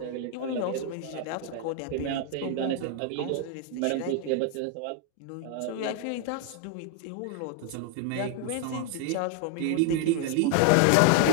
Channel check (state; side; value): different; both; correlation 0.00